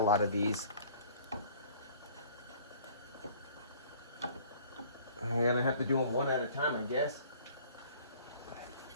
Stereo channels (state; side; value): inverted; both; correlation -0.52